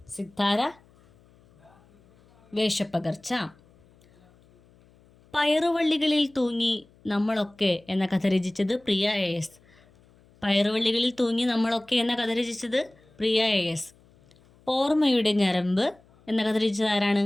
സിത്താര വേഷപ്പകർച്ച. പയറുവള്ളികളിൽ തൂങ്ങി നമ്മളൊക്കെ എന്ന കഥ രചിച്ചത് പ്രിയ AS. പയറുവള്ളികളിൽ തൂങ്ങി നമ്മളൊക്കെ എന്ന കഥ രചിച്ചത് പ്രിയ AS. ഓർമ്മയുടെ ഞരമ്പ് എന്ന കഥ രചിച്ചത് ആരാണ്?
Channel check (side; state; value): left; noise; hum, 30 dB below the sound